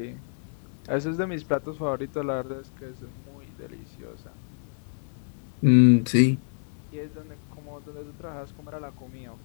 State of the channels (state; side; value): silent; right; digital silence